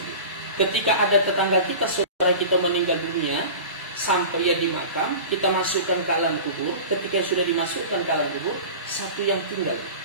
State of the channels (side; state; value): both; inverted; correlation -0.35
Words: Ketika ada tetangga kita, saudara kita meninggal dunia, sampai ia di makam, kita masukkan ke alam kubur. Ketika sudah dimasukkan ke alam kubur, 1 yang tinggal,